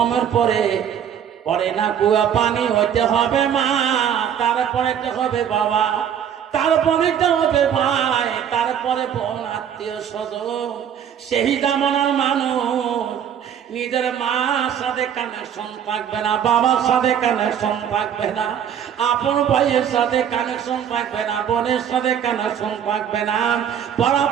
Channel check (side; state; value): left; quieter; 8.9 dB